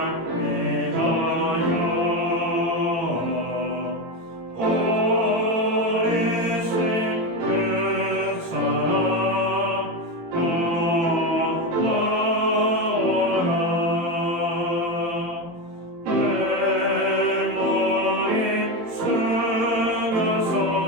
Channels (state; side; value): late; left; 18 ms